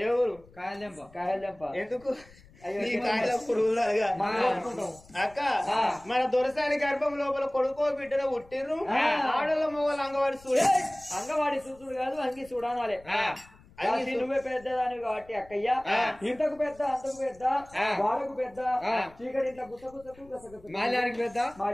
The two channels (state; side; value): noise; left; rumble, 25 dB below the sound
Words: ఏ ఊరు కాయలెంప ఎందుకు నీ కాయల పురుగులుగా అక్క మన దొరసాని గర్భం లోపల కొడుకో బిడ్డను పుట్టిర్రు ఆడల మొగలు అంగవాడి చూడ అంగవాడి చూసుడు కాదు అంగి చూడాలి నువ్వే పెద్దదాని కాబట్టి అక్కయ్య ఇంతకు పెద్ద అంతకు పెద్ద వాడకు పెద్ద చీకటి ఇంట్లో గుసగుసకు మాల్యానికి